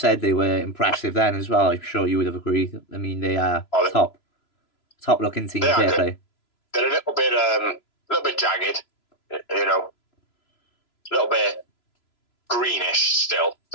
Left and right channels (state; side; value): late; right; 3.0 ms